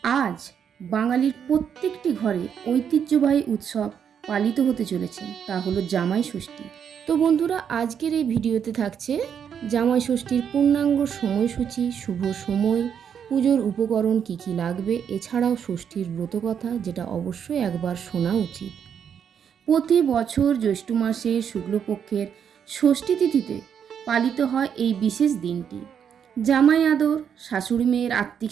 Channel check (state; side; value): quieter; left; 7.9 dB